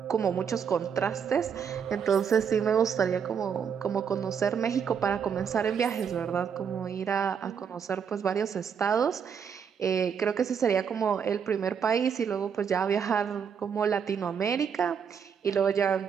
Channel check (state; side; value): quieter; left; 7.1 dB